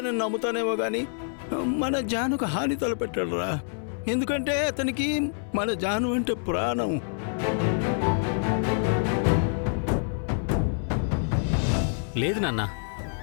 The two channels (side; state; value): right; silent; 60 dB below the other